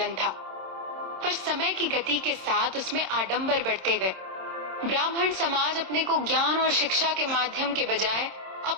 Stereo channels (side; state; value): left; late; 26 ms